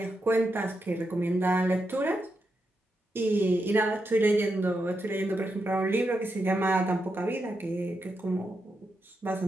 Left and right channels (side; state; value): both; normal; correlation 0.85